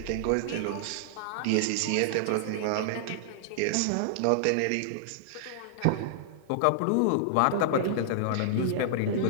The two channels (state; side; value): different; both; correlation -0.01